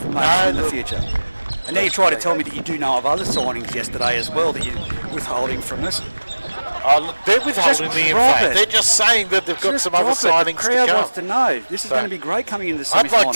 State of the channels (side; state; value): both; inverted; correlation -1.00